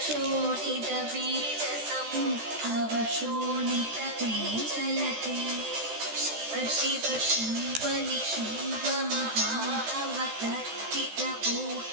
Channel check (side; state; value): left; late; 14 ms